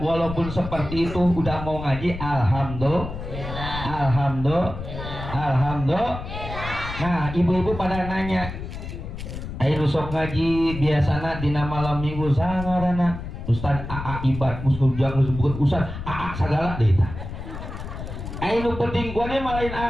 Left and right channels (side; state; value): left; noise; rumble, 8 dB below the sound